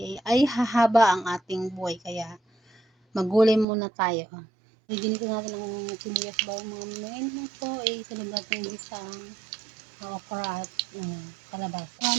ay hahaba ang ating buhay. Kaya maggulay muna tayo. Ginito natin ang sibuyas bawang mga mami. Ngayon naman po ay sunod natin isang okra at kalabasa.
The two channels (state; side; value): drops out; left; at 3.7 s